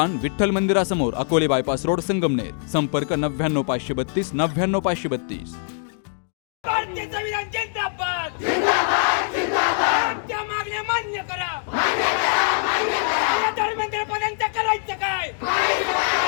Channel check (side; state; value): right; silent; digital silence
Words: विठ्ठल मंदिरासमोर, अकोले बायपास रोड, संगमनेर. संपर्क 99 532 99 532. भारतीय संविधान जिंदाबाद जिंदाबाद जिंदाबाद. त्या मागण्या मान्य करा मान्य करा मान्य करा. धर्मेंद्रपदांचं करायचं काय?